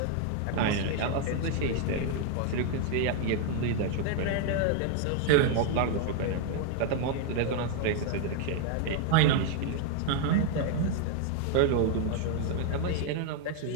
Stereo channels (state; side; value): different; both; correlation 0.00